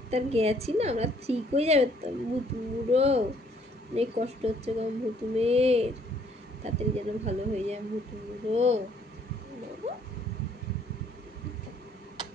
গেছি না, আমরা ঠিক হয়ে যাবে তো। বুড়ো অনেক কষ্ট হচ্ছে গো ভুতুমের, তাড়াতাড়ি যেন ভালো হয়ে যায় ভুতু বুড়ো।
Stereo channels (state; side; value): normal; both; correlation 0.64